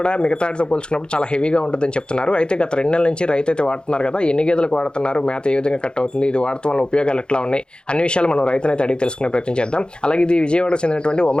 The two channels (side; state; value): right; late; 0.050 ms